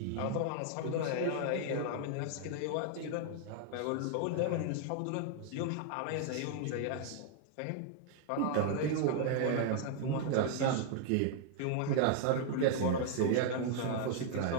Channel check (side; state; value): both; different; correlation 0.00